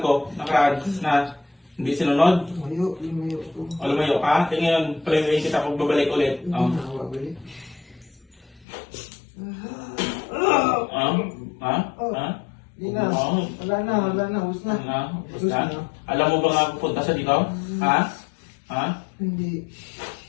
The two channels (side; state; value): right; drops out; at 8.7 s